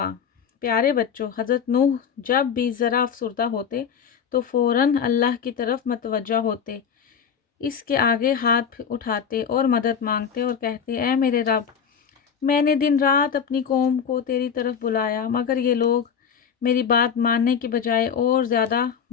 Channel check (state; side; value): quieter; right; 7.1 dB